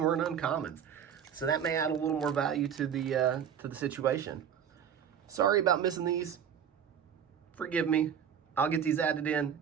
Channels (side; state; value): left; quieter; 8.3 dB